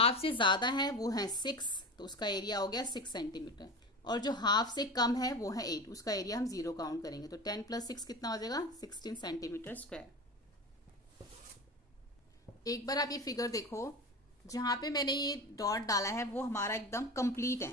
से ज्यादा है वो है 6, तो उसका एरिया हो गया 6 सेंटीमीटर। और जो हाफ से कम है वो है 8, उसका एरिया हम 0 काउंट करेंगे। तो 10 + 6 कितना हो जाएगा? 16 सेंटीमीटर स्क्वायर। एक बार आप ये फिगर देखो, जहां पे मैंने ये डॉट डाला है वो हमारा एकदम कंप्लीट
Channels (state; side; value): normal; both; correlation 0.27